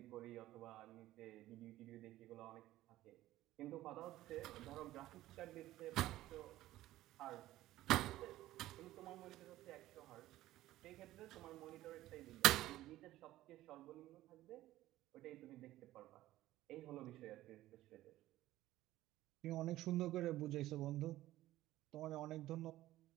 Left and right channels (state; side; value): quieter; left; 15.4 dB